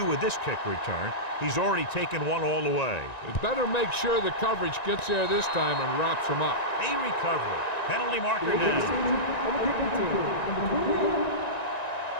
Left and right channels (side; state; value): right; late; 1.9 ms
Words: with this kick return. He's already taken one all the way. It better make sure the coverage gets there this time and wraps him up. A recovery. Penalty marker down.